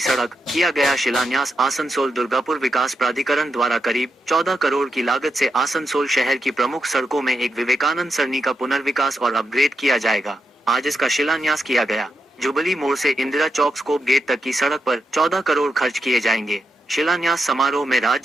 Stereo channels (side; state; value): both; normal; correlation 0.85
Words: किया गया शिलान्यास। आसनसोल दुर्गापुर विकास प्राधिकरण द्वारा करीब 14 करोड़ की लागत से आसनसोल शहर की प्रमुख सड़कों में एक विवेकानंद सरनी का पुनर्विकास और अपग्रेड किया जाएगा। आज इसका शिलान्यास किया गया। जुबली मोड़ से इंदिरा चौक स्कोप गेट तक की सड़क पर 14 करोड़ खर्च किए जाएंगे। शिलान्यास समारोह में